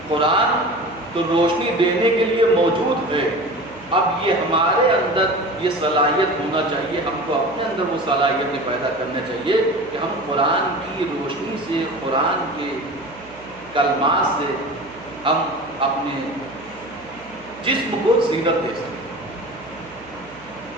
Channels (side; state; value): right; noise; hum, 24 dB below the sound